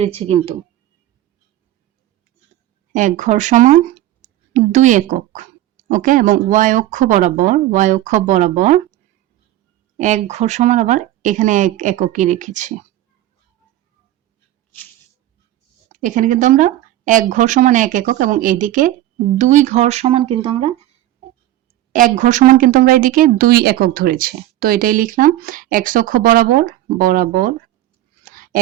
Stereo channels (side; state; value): left; quieter; 14.1 dB